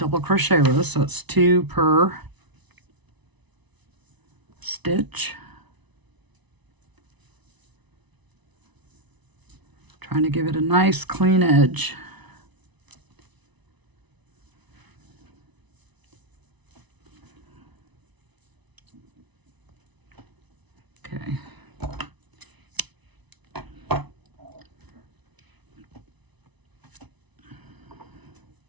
crochet row, so it's 2 per stitch. Trying to give it a nice clean edge. Okay.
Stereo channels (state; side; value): late; left; 1.0 ms